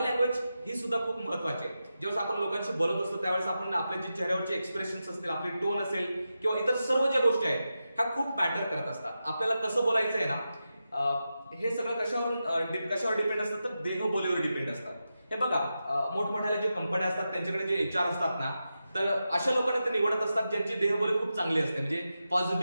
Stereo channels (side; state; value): both; inverted; correlation -0.90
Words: लँग्वेज ही सुद्धा खूप महत्वाची आहे. जेव्हा आपण लोकांशी बोलत असतो त्यावेळेस आपण आपल्या जे चेहऱ्यावरचे एक्सप्रेशन्स असतील, आपली टोन असेल किंवा इतर सर्व ज्या गोष्टी आहेत ह्या खूप मॅटर करत असतात. आपल्याला कसं बोलायचं आहे ना हे सगळं कशावर डिपेंड असतं तर देहबोलीवर डिपेंड असतात. हे बघा, मोठमोठ्या ज्या कंपन्या असतात त्यांच्याकडे जे HR असतात ना तर अशा लोकांना ते निवडत असतात ज्यांची देहबोली खूप चांगली असते, म्हणजे